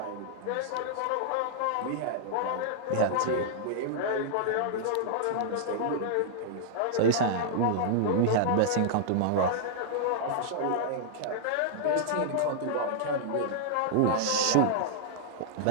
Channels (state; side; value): different; both; correlation -0.01